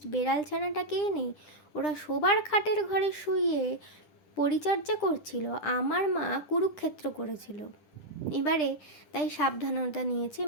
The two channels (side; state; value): right; late; 9.9 ms